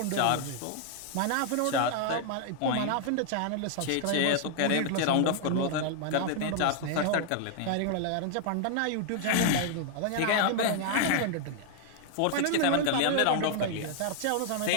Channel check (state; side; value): different; both; correlation 0.00